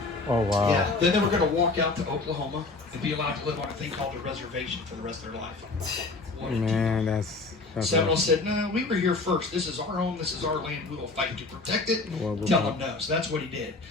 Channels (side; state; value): right; quieter; 3.6 dB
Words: Oh, wow. Yeah, then they were going to walk out to Oklahoma and be allowed to live on a thing called a reservation for the rest of their life. Man, that's Seminole said, no, we were here first. This is our home. This is our land. We will fight to protect it. Tell them no. So that's what he did.